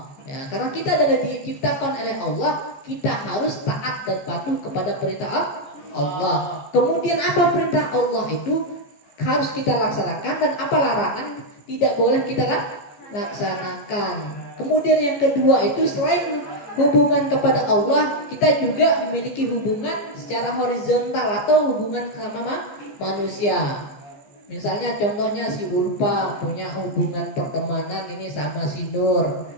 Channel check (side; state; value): right; late; 15 ms